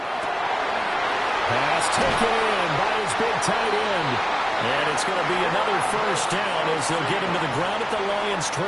Pass taken in by his big tight end. And it's going to be another first down as they'll get him to the ground at the Lions'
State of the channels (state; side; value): identical; both; correlation 1.00